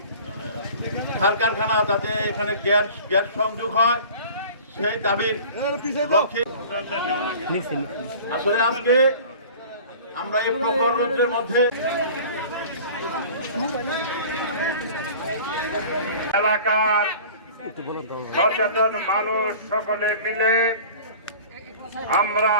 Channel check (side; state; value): both; inverted; correlation -0.42